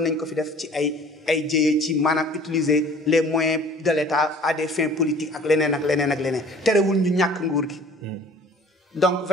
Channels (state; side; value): normal; both; correlation 0.49